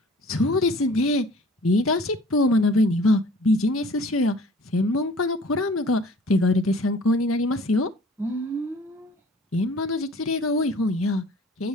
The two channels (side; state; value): both; normal; correlation 0.49